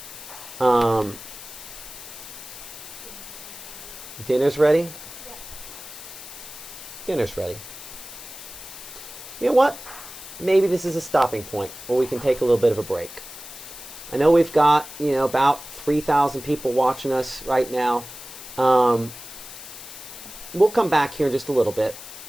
Dinner's ready? Yeah. Dinner's ready. You know what? Maybe this is a stopping point where we can take a little bit of a break. I know we've got, you know, about 3,000 people watching us right now. We'll come back here in just a little bit,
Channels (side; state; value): left; noise; hiss, 13 dB below the sound